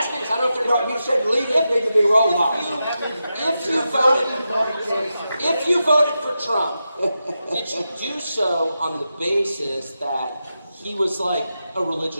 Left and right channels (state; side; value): inverted; both; correlation -0.89